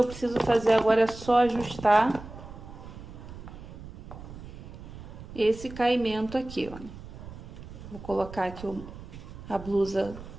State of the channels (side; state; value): right; noise; rumble, 14 dB below the sound